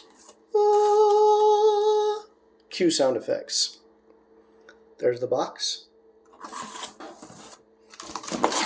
Cue sound effects. There's the box.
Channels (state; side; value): identical; both; correlation 1.00